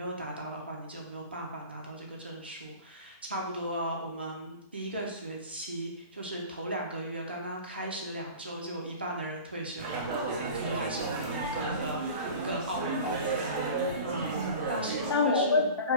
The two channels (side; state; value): both; inverted; correlation -0.38